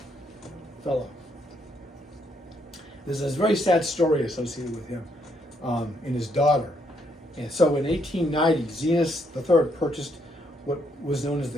fellow. There's a very sad story associated with him and his daughter. And so in 1890, Zenas III purchased what was known as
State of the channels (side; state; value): both; normal; correlation 0.74